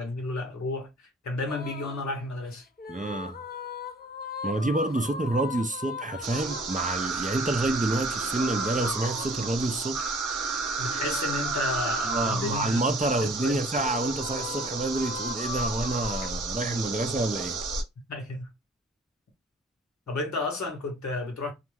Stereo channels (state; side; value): normal; both; correlation 0.52